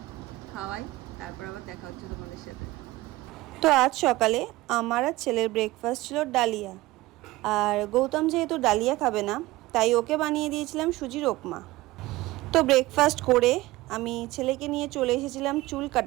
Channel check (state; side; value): quieter; left; 18.9 dB